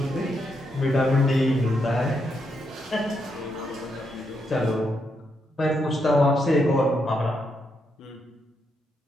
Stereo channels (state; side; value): normal; both; correlation 0.80